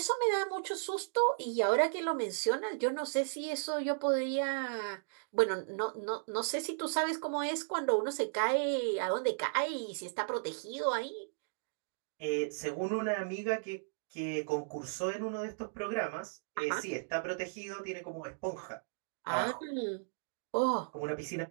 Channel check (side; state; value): left; silent; digital silence